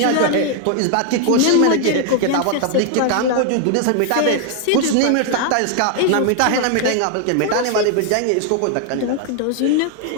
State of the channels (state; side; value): different; both; correlation 0.00